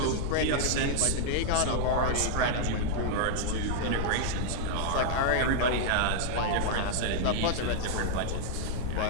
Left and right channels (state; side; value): different; both; correlation -0.01